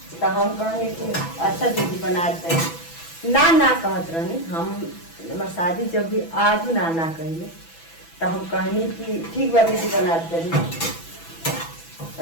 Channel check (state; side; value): late; right; 6.0 ms